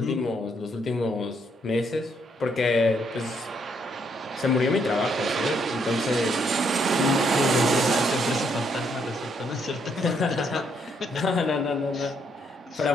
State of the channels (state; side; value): normal; both; correlation 0.73